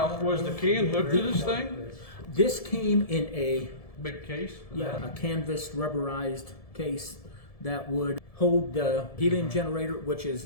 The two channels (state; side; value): late; right; 1.7 ms